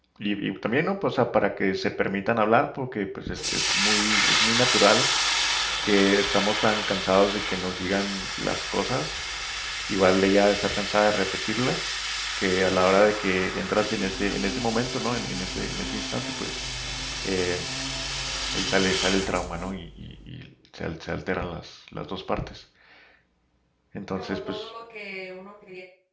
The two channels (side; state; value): both; identical; correlation 1.00